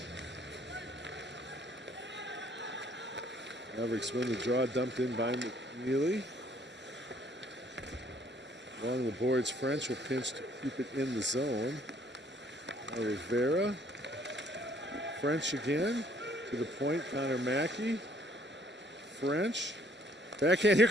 Mavericks win the draw, dumped in by McNeely. Along the boards, French will pinch to keep it in the zone. Now Rivera. French again. To the point, Connor Mackey. French. Backhand, here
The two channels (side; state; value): both; normal; correlation 0.63